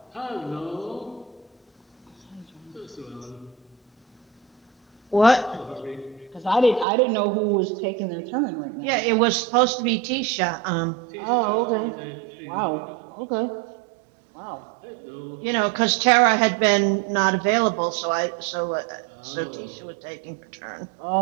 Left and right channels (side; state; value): left; drops out; at 6.9 s